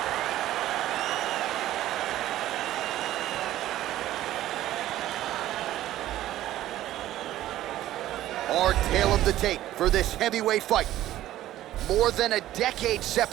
Our tale of the tape for this heavyweight fight. More than a decade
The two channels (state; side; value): quieter; left; 14.0 dB